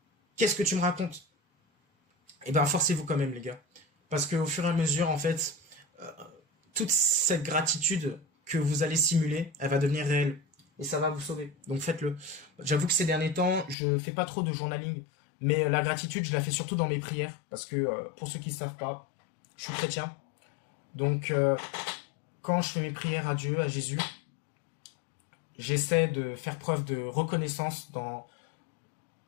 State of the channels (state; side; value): drops out; right; at 13.8 s